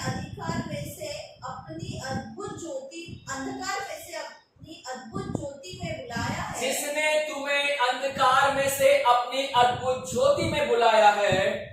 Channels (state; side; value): identical; both; correlation 1.00